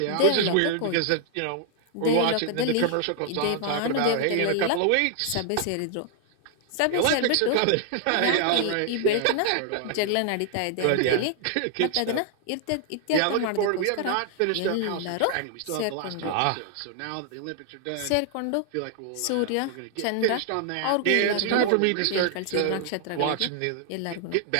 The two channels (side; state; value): both; different; correlation 0.00